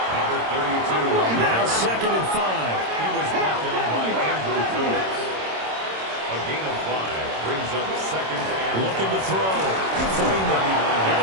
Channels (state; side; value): late; left; 26 ms